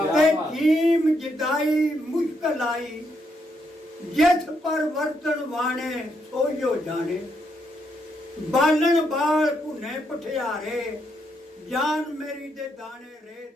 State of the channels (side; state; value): both; normal; correlation 0.78